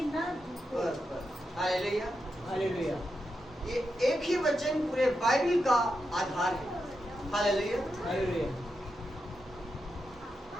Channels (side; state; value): both; normal; correlation 0.87